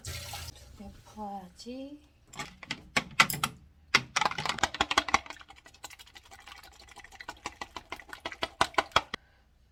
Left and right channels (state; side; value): identical; both; correlation 1.00